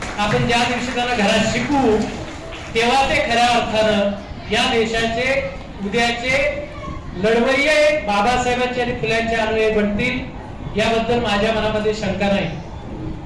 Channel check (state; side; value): identical; both; correlation 1.00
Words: आपण ज्या दिवशी त्यांना घरात शिकू तेव्हा ते खऱ्या अर्थानं या देशाचे उद्याचे लढवय्ये बाबासाहेबांचे आणि फुल्यांचे अनुयायी बनतील, याबद्दल माझ्या मनामध्ये शंका नाही.